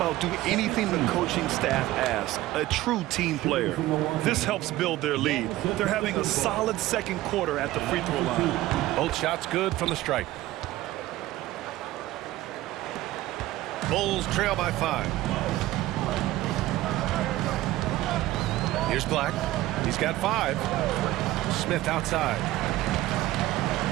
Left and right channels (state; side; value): quieter; left; 16.3 dB